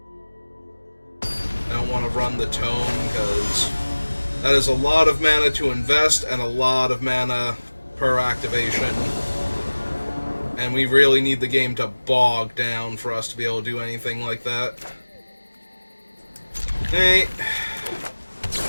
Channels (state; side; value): inverted; both; correlation -1.00